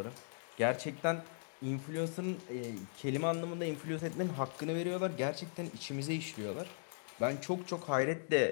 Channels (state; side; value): silent; right; digital silence